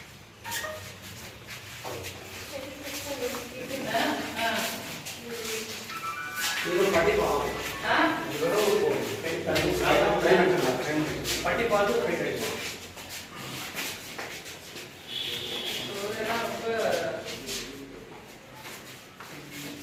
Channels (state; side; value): identical; both; correlation 1.00